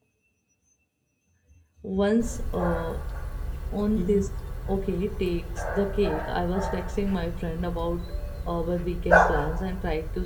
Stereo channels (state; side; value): identical; both; correlation 1.00